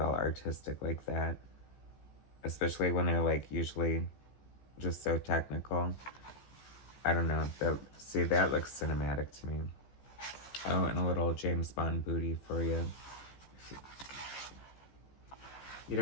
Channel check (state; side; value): late; right; 15 ms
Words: all artistic like that. Especially when they're, like, usually just so technical. I don't know. See, that looks cinematic to me. Oh, and a little James Bond booty for you. You